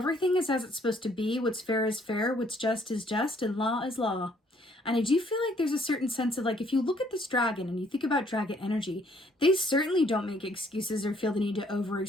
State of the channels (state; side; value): normal; both; correlation 0.64